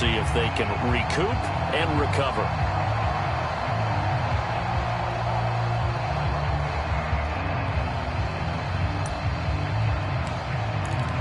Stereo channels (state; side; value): identical; both; correlation 1.00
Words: if they can recoup and recover.